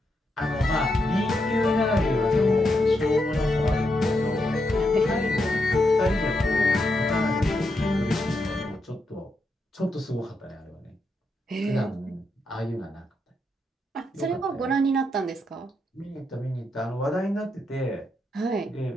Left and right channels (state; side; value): normal; both; correlation 0.82